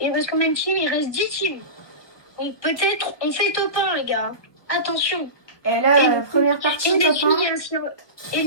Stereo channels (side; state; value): right; late; 1.2 ms